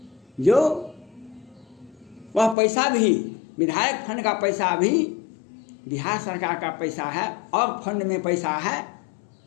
जो वह पैसा भी, विधायक फंड का पैसा भी बिहार सरकार का पैसा है और फंड में पैसा है।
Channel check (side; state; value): right; drops out; at 2.6 s